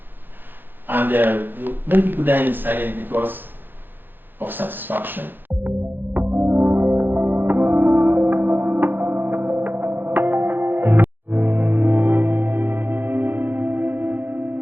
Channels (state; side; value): late; left; 0.096 ms